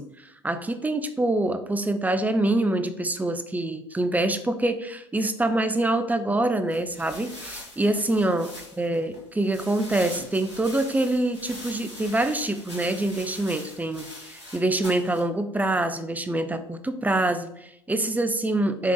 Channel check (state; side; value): normal; both; correlation 0.74